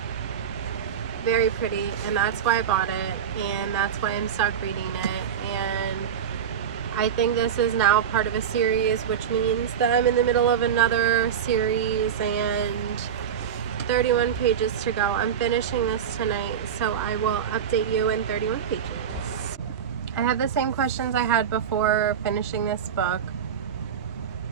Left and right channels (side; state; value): left; quieter; 8.2 dB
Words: very pretty, and that's why I bought it, and that's why I'm stuck reading it. And I think this is now part of a series, which means that I'm in the middle of another series, and 31 pages to go. I'm finishing this tonight, so I will update you in 31 pages. I have the same questions I had before finishing this book.